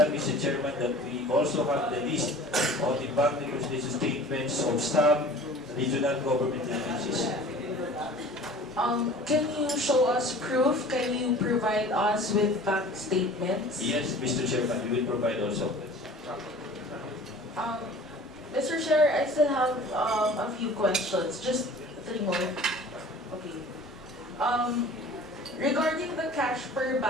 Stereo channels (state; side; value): normal; both; correlation 0.44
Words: Mr. Chairman, that we also have the list of the bank reconciliation statements of some regional government agencies. Can you show us proof? Can you provide us with bank statements? Yes, Mr. Chairman, we will provide also. Mr. Chair, I still have a few questions. Just 3 more. Okay. Regarding the cash per